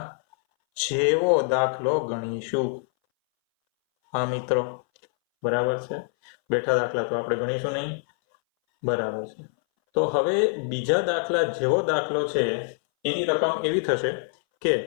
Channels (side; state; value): right; silent; 60 dB below the other